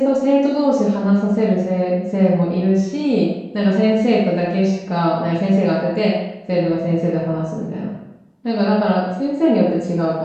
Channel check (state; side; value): identical; both; correlation 1.00